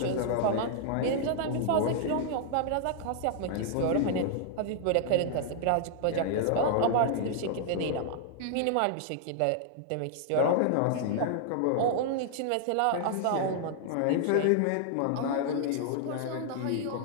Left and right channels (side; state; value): both; different; correlation -0.01